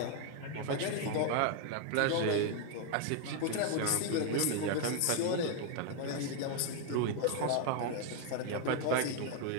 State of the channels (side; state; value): both; different; correlation 0.01